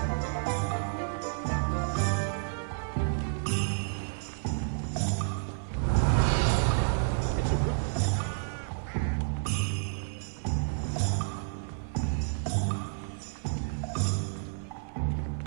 It's a good thing we have auras, is all I'm saying.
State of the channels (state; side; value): silent; left; 57 dB below the other